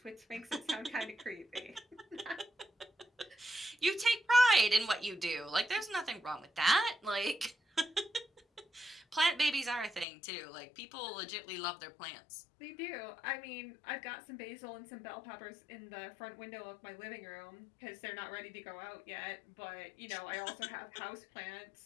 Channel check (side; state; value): right; drops out; at 10.1 s